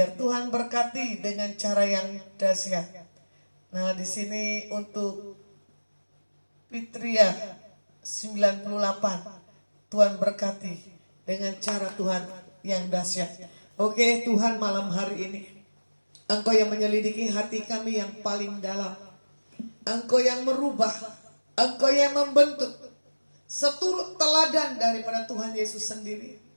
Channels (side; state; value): both; inverted; correlation -1.00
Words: Tuhan berkati dengan cara yang dahsyat. Nah, di sini untuk Fitria 98. Tuhan berkati dengan cara Tuhan yang dahsyat. Oke, Tuhan malam hari ini, Engkau yang menyelidiki hati kami yang paling dalam. Engkau yang merubah, Engkau yang membentuk, seturut teladan daripada Tuhan Yesus sendiri.